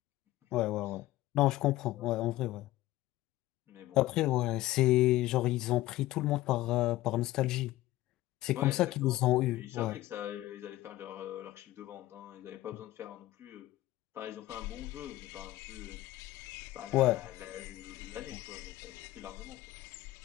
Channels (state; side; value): quieter; right; 16.5 dB